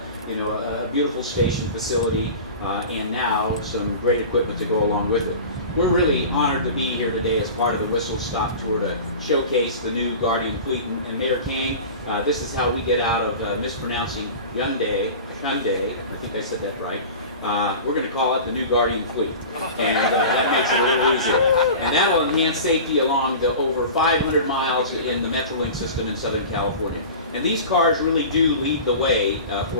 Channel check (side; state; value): both; inverted; correlation -0.35